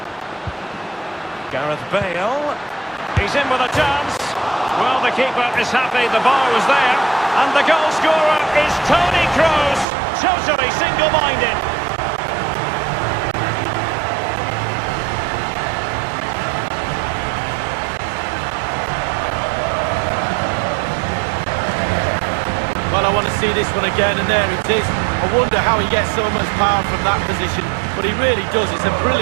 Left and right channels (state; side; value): drops out; left; at 9.9 s